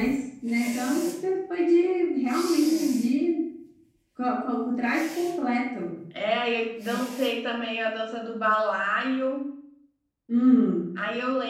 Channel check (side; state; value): both; identical; correlation 1.00